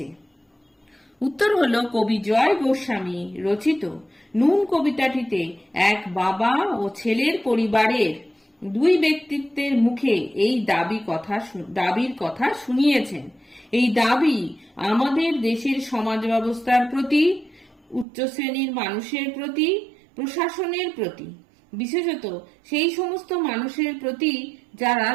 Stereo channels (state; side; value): drops out; left; at 18.1 s